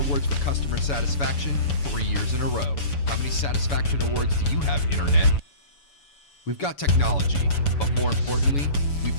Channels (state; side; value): late; right; 7.0 ms